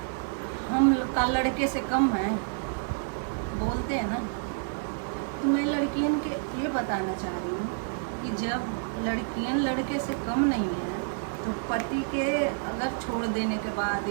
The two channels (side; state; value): left; silent; 59 dB below the other